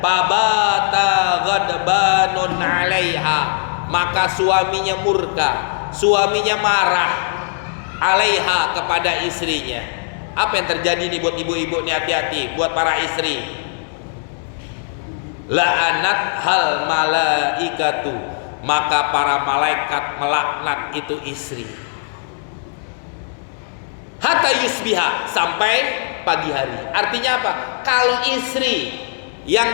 ghadbanun 'alaiha, maka suaminya murka, suaminya marah, 'alaiha, kepada istrinya. Apa yang terjadi nih buat ibu-ibu nih, hati-hati buat para istri. La'anat hal malaikatu, maka para malaikat melaknat itu istri. Hatta yusbiha, sampai pagi hari. Artinya apa? Kalau istri yang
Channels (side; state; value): right; silent; digital silence